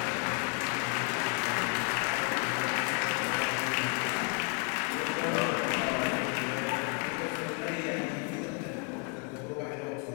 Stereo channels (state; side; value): quieter; right; 35.7 dB